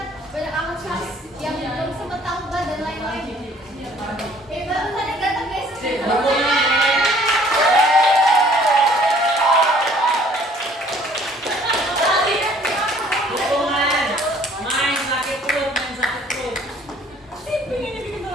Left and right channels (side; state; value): both; normal; correlation 0.57